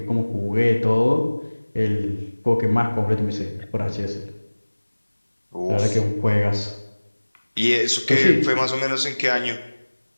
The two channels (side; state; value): both; inverted; correlation -1.00